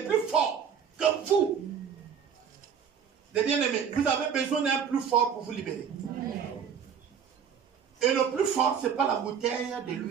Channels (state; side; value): quieter; left; 7.5 dB